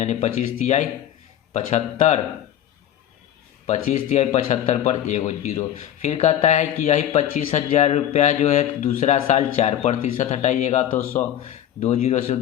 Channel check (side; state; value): right; quieter; 11.0 dB